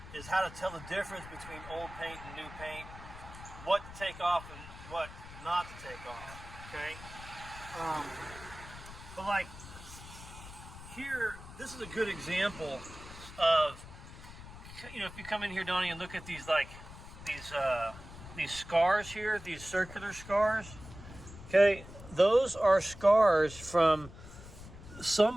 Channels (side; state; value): left; noise; rumble, 15 dB below the sound